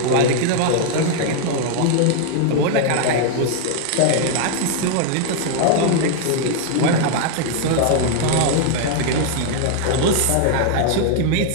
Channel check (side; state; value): both; different; correlation 0.00